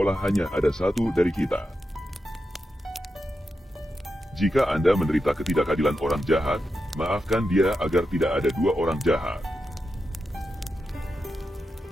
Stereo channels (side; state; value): both; normal; correlation 0.88